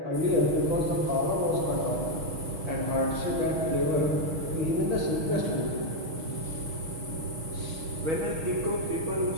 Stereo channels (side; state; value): left; late; 6.3 ms